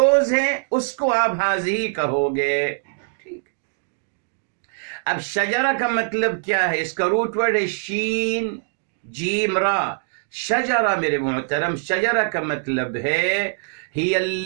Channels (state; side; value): silent; left; digital silence